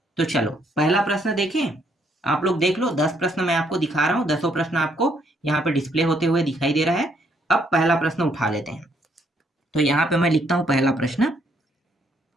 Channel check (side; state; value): both; normal; correlation 0.70